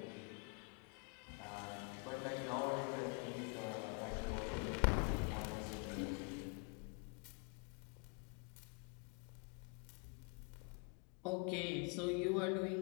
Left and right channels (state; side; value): quieter; right; 34.5 dB